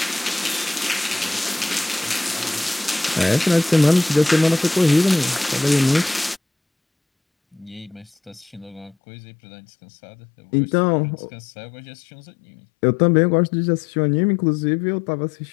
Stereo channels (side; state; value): right; drops out; at 9.0 s